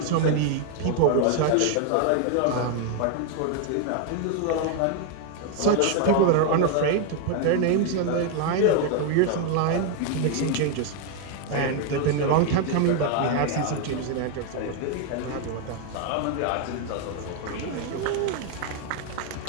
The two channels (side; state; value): both; different; correlation 0.01